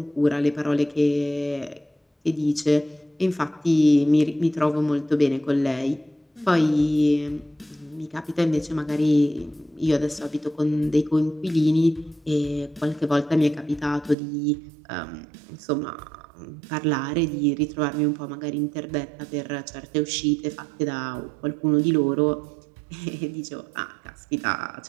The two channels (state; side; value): drops out; left; at 14.2 s